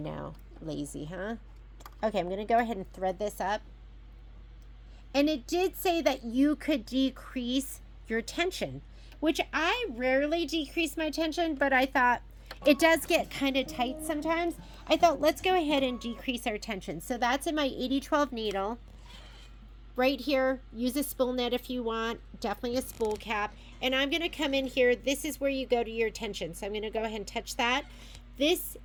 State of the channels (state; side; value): identical; both; correlation 1.00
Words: lazy, huh? Okay, I'm going to go ahead and thread this up. And it did say that you could decrease your tension, which I rarely decrease my tension, but I thought it does get kind of tight sometimes. I thought, let's go ahead and decrease our tension. So that's in my 8012 needle. Right here, use a spool net if you want, definitely a spool cap. And I'm going to come in here. This is where you go to your tension. So I'm going to go ahead and touch that. This